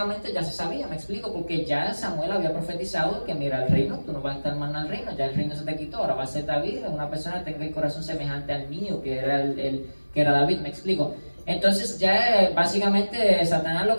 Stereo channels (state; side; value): inverted; both; correlation -1.00